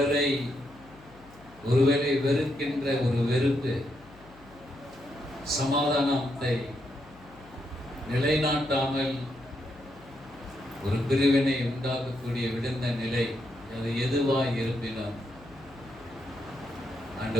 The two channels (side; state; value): left; noise; hum, 23 dB below the sound